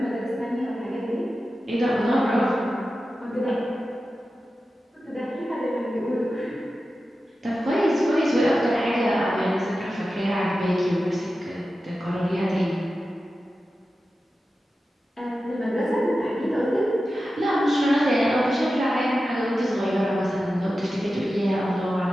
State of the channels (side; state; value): both; normal; correlation 0.93